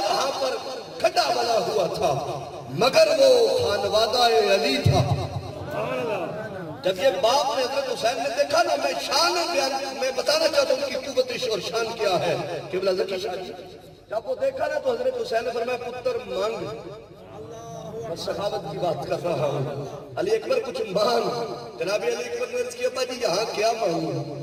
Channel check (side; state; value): both; identical; correlation 1.00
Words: وہاں پر کھڈا بنا ہوا تھا، مگر وہ خانوادہ علی تھا۔ جب یہ باپ نے حضرت حسین نے دیکھا نا، میں شان بیان میں بتانا چاہتا ہوں کہ قوت اور شان کیا ہے۔ قبلہ ذکی شاہ جی جب وہ دیکھا نا تو حضرت حسین نے فرمایا پتر مانگ، میں سخاوت کی بات کر رہا ہوں، علی اکبر کچھ مانگ۔ جناب علی اکبر نے عرض کیا ابا جی یہاں کیا مانگوں،